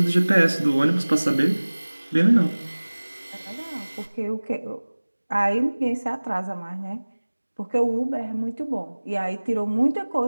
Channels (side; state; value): both; inverted; correlation -1.00